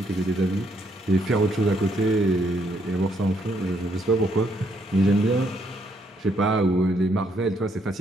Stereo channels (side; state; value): both; normal; correlation 0.73